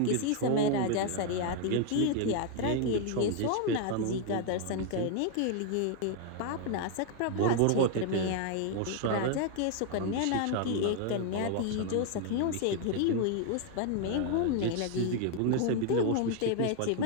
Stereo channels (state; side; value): different; both; correlation 0.00